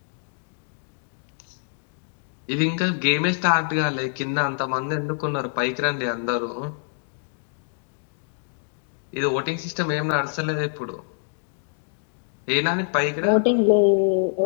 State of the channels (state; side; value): silent; right; digital silence